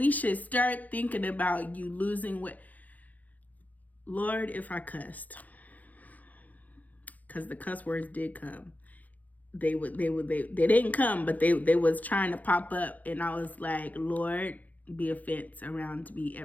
should start thinking about you losing weight. Lord, if I cussed, because the cuss words did come. They didn't come, but they was trying to pop up, and I was like, Lord, be a fence around me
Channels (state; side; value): late; right; 0.079 ms